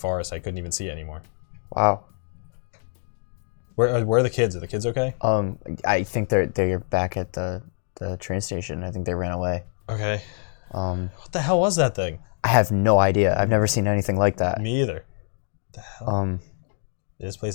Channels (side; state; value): right; silent; digital silence